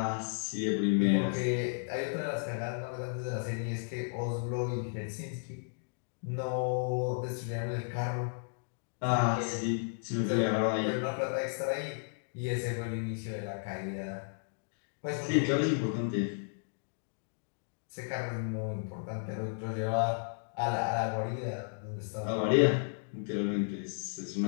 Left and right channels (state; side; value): silent; right; digital silence